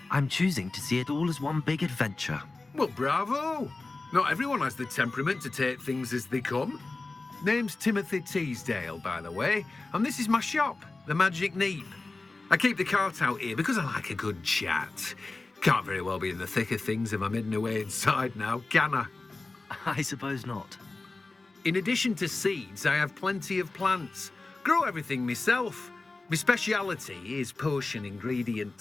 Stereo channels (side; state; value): right; quieter; 3.4 dB